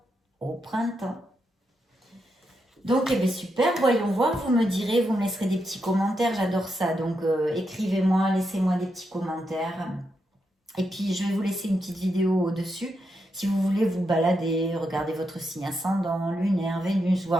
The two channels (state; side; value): normal; both; correlation 0.83